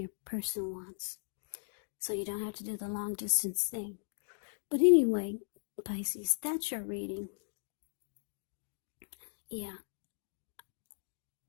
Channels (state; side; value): silent; right; digital silence